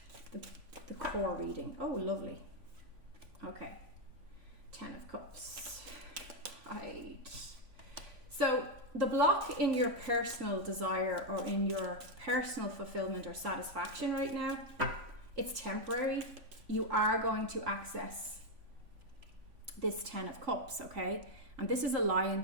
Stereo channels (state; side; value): late; left; 3.5 ms